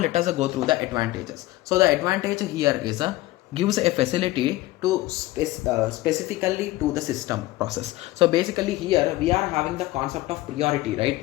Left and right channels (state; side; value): quieter; right; 18.0 dB